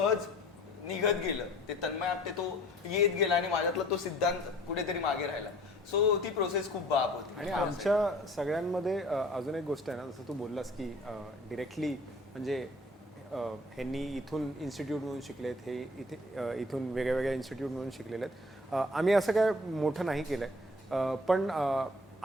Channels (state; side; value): normal; both; correlation 0.51